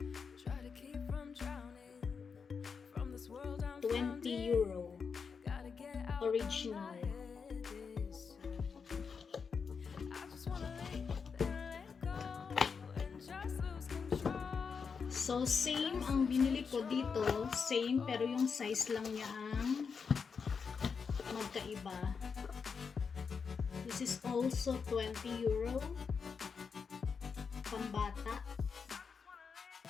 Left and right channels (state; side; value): quieter; right; 5.7 dB